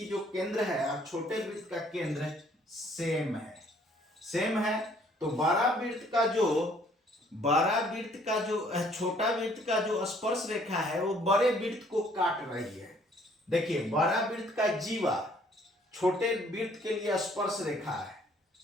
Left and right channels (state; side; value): normal; both; correlation 0.61